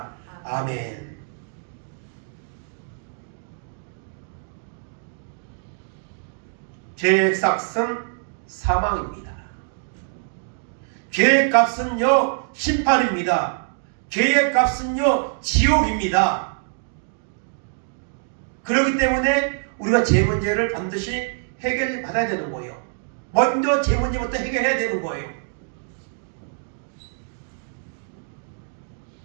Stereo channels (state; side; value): silent; left; digital silence